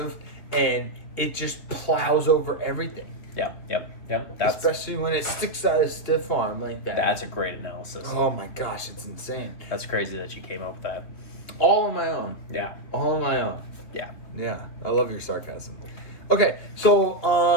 and it just plows over everything. Yep. Especially when it sticks out a stiff arm like that. That's a great analysis. Oh my gosh, it's insane. That's crazy that you came up with that. All on my own. Yeah. All on my own. Yeah. Yeah, I love your sarcasm. Okay,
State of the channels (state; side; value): late; right; 3.2 ms